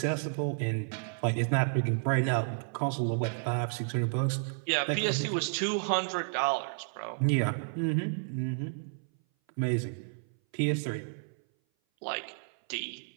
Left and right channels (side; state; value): left; silent; 57 dB below the other